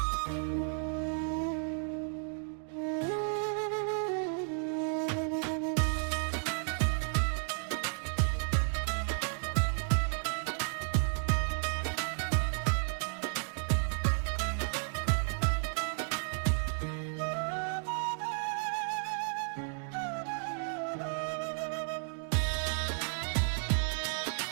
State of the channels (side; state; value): left; silent; 56 dB below the other